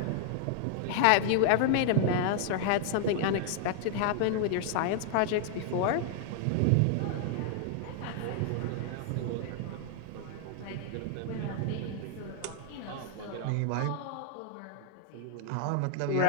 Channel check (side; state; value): both; different; correlation -0.01